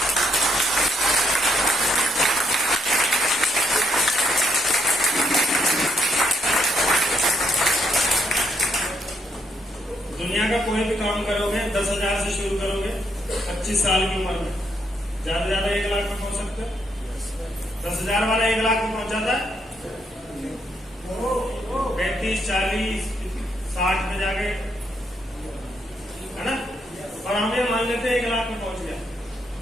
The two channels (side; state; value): both; normal; correlation 0.74